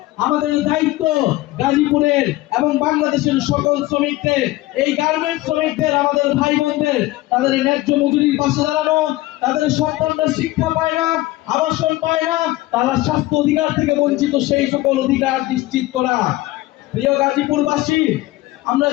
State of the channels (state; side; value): quieter; right; 17.9 dB